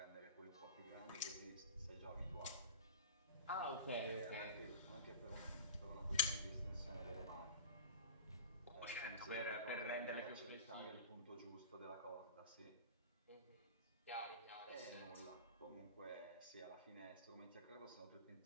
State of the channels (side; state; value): both; inverted; correlation -0.32